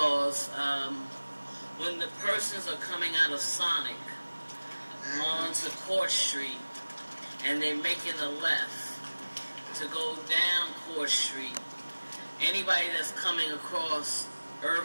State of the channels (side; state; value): both; inverted; correlation -1.00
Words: when the persons are coming out of Sonic onto Court Street and they're making a left to go down Court Street, anybody that's coming across